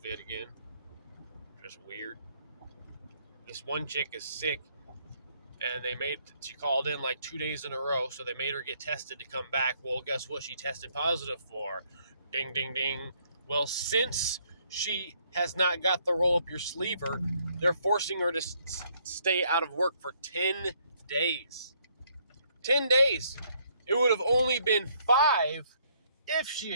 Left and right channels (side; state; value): both; inverted; correlation -0.68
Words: again. Just weird. This one chick is sick, and she called in like 2 days in a row, so they made her get tested to come back. Well, guess what she tested positive for? Ding, ding, ding. Well, since she has not got the roll up your sleever, they're forcing her to stay out of work for 10 days. 10 days. It would have only been 5 if she